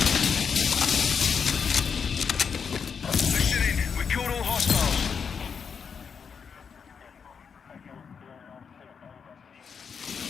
Listen in. We killed all hostiles.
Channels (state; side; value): quieter; right; 6.4 dB